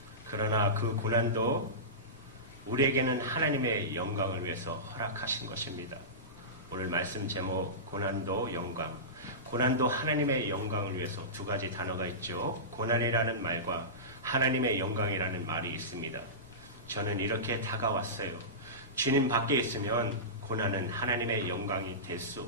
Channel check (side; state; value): left; noise; rumble, 21 dB below the sound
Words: 그러나 그 고난도 우리에게는 하나님의 영광을 위해서 허락하신 것입니다. 오늘 말씀 제목 고난도 영광, 고난도 하나님의 영광을 위해서 두 가지 단어가 있죠. 고난이라는 말과 하나님의 영광이라는 말이 있습니다. 저는 이렇게 다가왔어요. 주님 밖에 있으면 고난은 하나님의 영광이 될 수